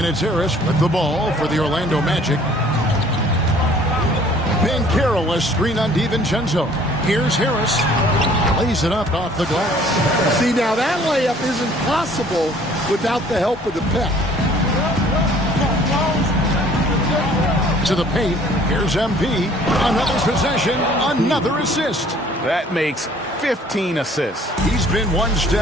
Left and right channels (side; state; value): both; normal; correlation 0.55